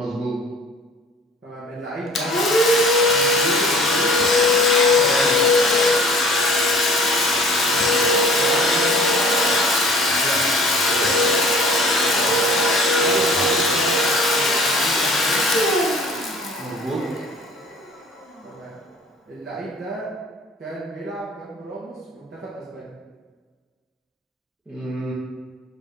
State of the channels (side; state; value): both; normal; correlation 0.49